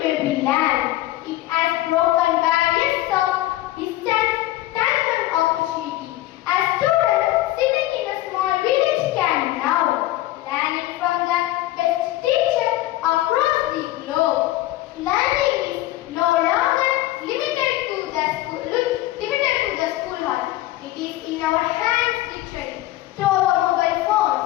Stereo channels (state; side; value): quieter; right; 15.8 dB